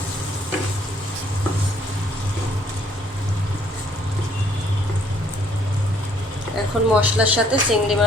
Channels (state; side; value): normal; both; correlation 0.64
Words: এখন মশলার সাথে চিংড়ি